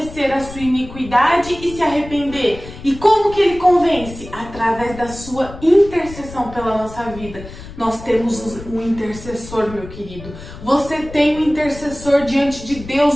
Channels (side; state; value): left; noise; rumble, 14 dB below the sound